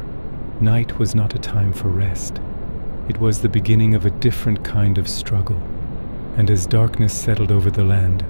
night was not a time for rest. It was the beginning of a different kind of struggle. And as darkness settled over the land,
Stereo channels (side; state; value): both; inverted; correlation -1.00